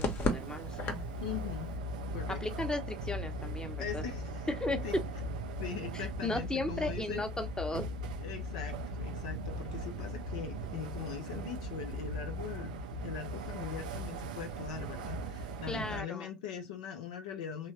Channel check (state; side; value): normal; both; correlation 0.43